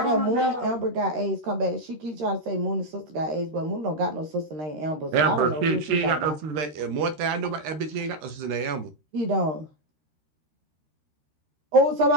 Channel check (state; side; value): late; left; 13 ms